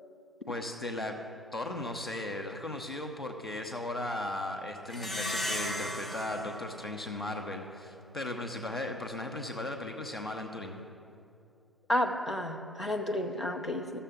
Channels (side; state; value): both; normal; correlation 0.58